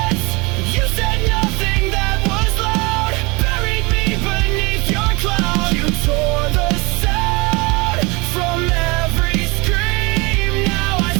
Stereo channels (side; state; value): left; quieter; 26.2 dB